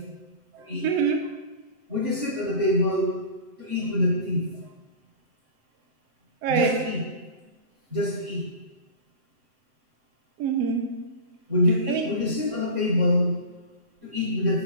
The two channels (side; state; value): left; late; 7.8 ms